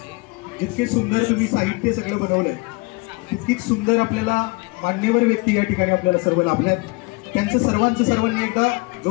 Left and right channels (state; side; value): quieter; right; 27.0 dB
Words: जितके सुंदर तुम्ही साहित्य सगळं बनवलंय तितकीच सुंदर आपल्याला मान्यवर व्यक्ती या ठिकाणी आपल्याला सर्व लाभल्यात. त्यांचं सर्वांनी एकदा